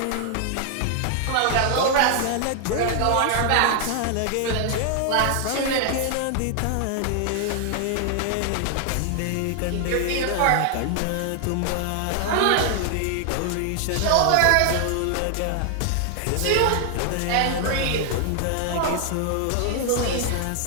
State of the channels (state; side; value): different; both; correlation 0.00